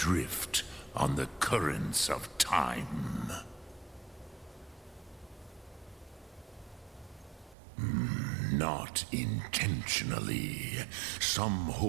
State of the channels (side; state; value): left; drops out; at 7.6 s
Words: on the currents of time. Not intentionally. Some